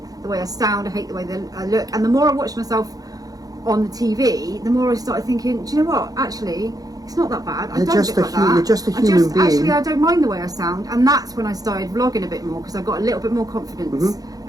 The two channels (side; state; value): left; late; 0.18 ms